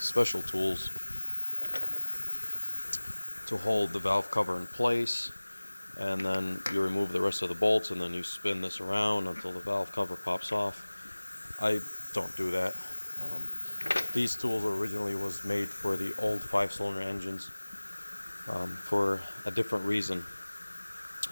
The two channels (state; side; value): inverted; both; correlation -1.00